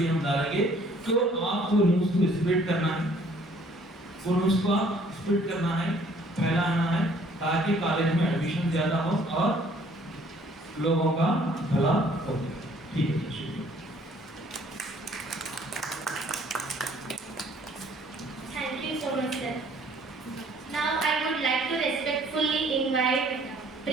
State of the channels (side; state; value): both; normal; correlation 0.59